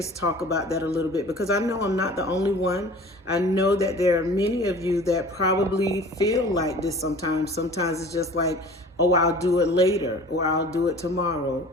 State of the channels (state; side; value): normal; both; correlation 0.44